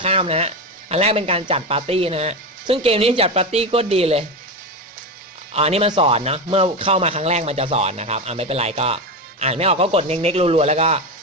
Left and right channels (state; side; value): normal; both; correlation 0.17